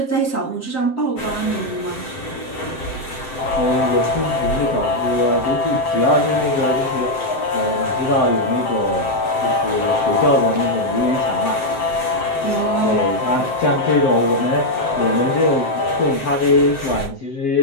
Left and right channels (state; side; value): late; right; 7.7 ms